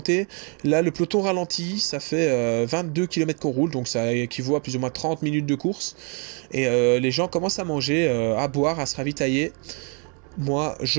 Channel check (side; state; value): left; quieter; 36.3 dB